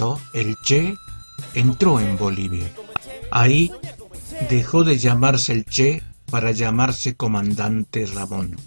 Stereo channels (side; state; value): both; inverted; correlation -1.00